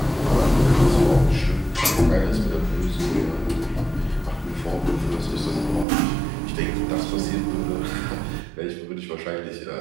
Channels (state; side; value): drops out; left; at 5.9 s